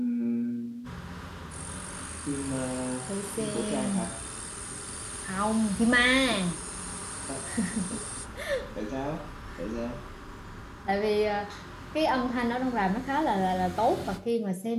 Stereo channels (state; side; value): identical; both; correlation 1.00